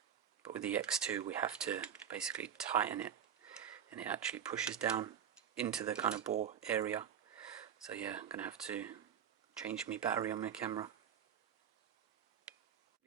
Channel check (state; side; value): quieter; left; 8.7 dB